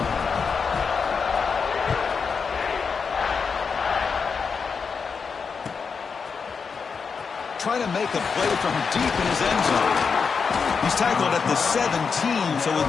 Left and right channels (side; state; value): right; quieter; 5.6 dB